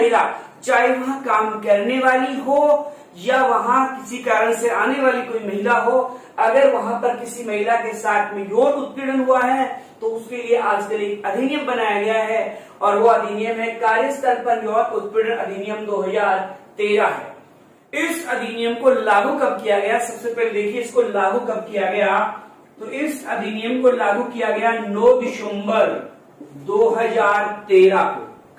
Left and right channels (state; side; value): identical; both; correlation 1.00